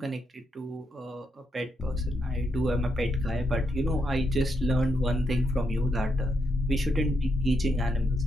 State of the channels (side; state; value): both; normal; correlation 0.80